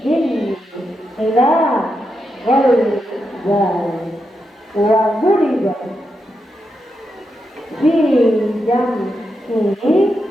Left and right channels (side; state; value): both; normal; correlation 0.85